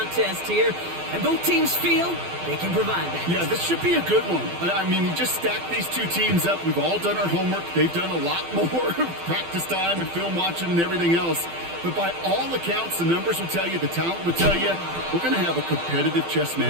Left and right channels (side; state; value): left; late; 12 ms